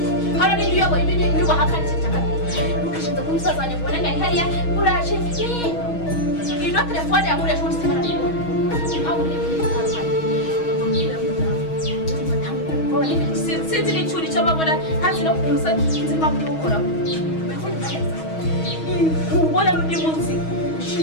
hano ni uyoboye ibintu bahakana cyane ukishinda ku musaza wanjye mbona ngari hariya uraje ino telefone yamureje muri simana ntabwo sinzi n'icyuri cyo babona ntazi no kuza nzima byo gukora ubona n'undi munsi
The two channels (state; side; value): late; right; 6.3 ms